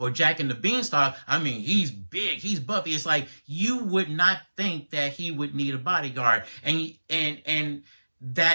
Jack and the Beanstalk. I mean, he's big, he's buffy. It's like you would not think that he would need a bodyguard, and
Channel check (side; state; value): both; inverted; correlation -1.00